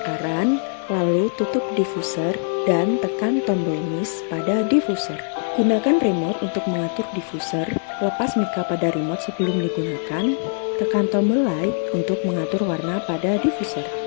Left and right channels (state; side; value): silent; right; 62 dB below the other